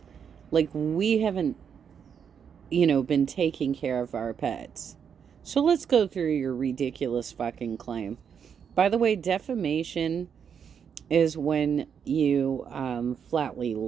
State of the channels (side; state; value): left; quieter; 7.4 dB